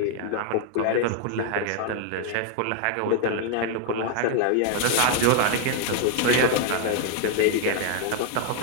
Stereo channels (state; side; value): different; both; correlation 0.00